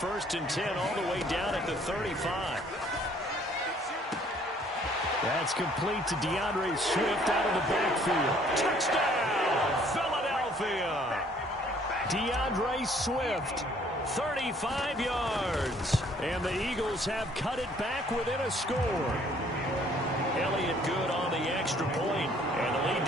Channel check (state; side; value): normal; both; correlation 0.60